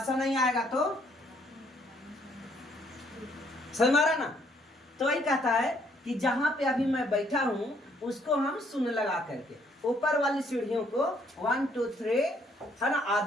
नहीं आएगा तो समझ में आ रहा ना। तो वही कहता है कि जहां पे अभी मैं बैठा हूं उसको हम शून्य लगा करके ऊपर वाली सीढ़ियों को 1 2 3 है ना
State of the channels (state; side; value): normal; both; correlation 0.67